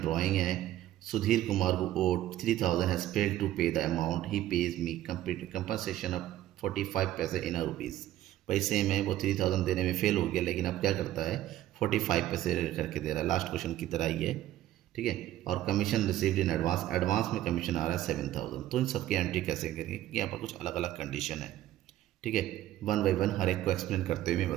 है। सुधीर कुमार को ओड 3,000 हैज फेल्ड टू पे the amount, he page me compensation of 45 पैसे इन रुपीज़। पैसे में वो 3,000 देने में फेल हो गया, लेकिन अब क्या करता है 45 पैसे करके दे रहा है, लास्ट क्वेश्चन की तरह ही है। ठीक है। और commission received in advance, advance में कमीशन आ रहा है 7000। तो इन सबकी एंट्री कैसे करेंगे, क्योंकि यहाँ पर कुछ अलग अलग कंडीशन है। ठीक है, वन बाई वन हर एक को एक्सप्लेन करते हुए मैं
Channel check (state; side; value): quieter; left; 13.7 dB